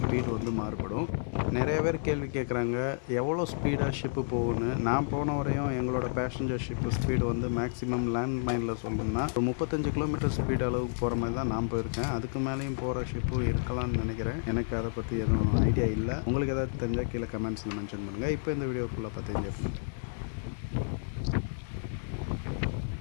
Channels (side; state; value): right; silent; digital silence